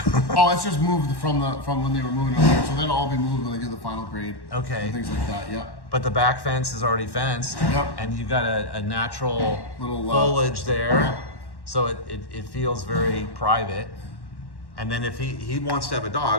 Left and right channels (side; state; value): right; late; 1.1 ms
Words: Oh, it's just moved from when they were moving over here. So that'll all be moved when they do the final grade. Okay. And things like that. Yeah. But the back fence is already fenced. Yep. And you've got a natural Little, foliage there. yeah. So it feels very private. And then if he wants to have a